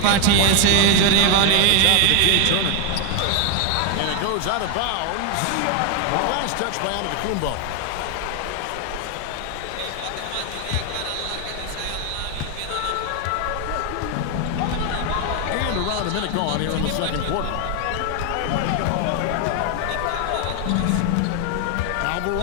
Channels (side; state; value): both; different; correlation 0.00